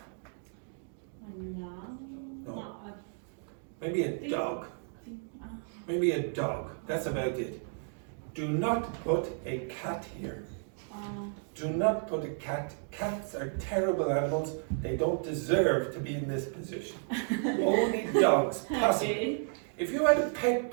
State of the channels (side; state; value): left; silent; 56 dB below the other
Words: No. Maybe a dog. Maybe a dog. That's about it. Do not put a cat here. Do not put a cat. Cats are terrible animals. They don't deserve to be in this position. Only dogs, possibly. If you had a pet